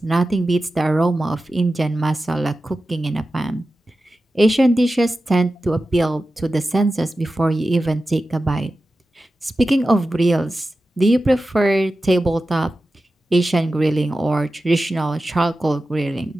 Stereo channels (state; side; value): normal; both; correlation 0.93